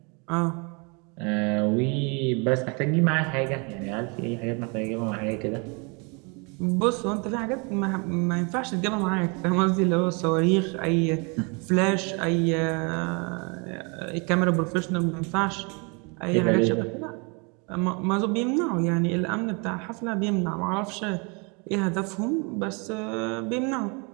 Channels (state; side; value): quieter; left; 32.4 dB